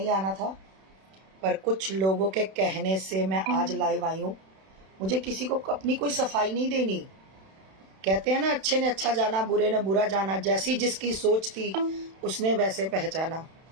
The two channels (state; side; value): late; left; 31 ms